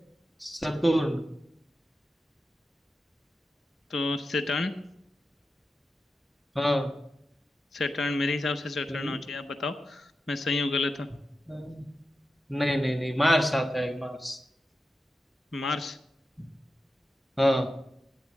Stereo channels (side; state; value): both; normal; correlation 0.90